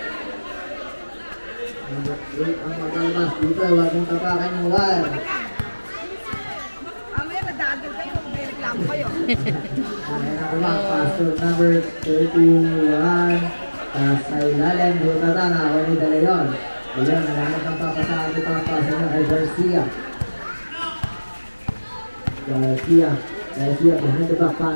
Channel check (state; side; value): inverted; both; correlation -1.00